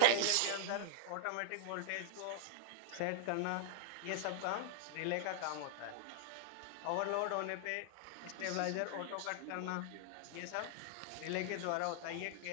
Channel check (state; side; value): different; both; correlation 0.00